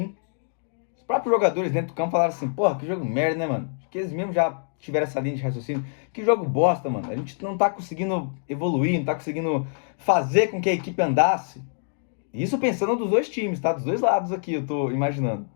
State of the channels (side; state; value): right; silent; digital silence